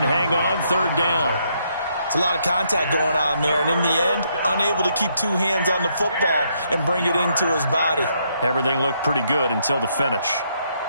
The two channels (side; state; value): both; inverted; correlation -0.74